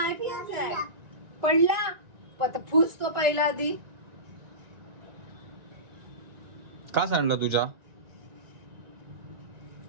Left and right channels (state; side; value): late; left; 1.9 ms